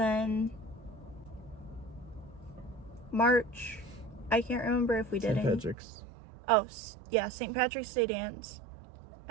March, I can't remember if we did St. any. Patrick's. Oh, yeah, St. Patrick's Day dance.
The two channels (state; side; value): drops out; left; at 5.8 s